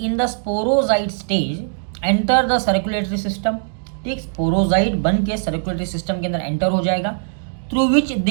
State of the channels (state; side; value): silent; left; digital silence